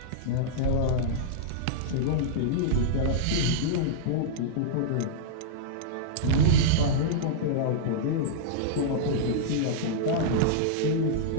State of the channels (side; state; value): both; different; correlation -0.02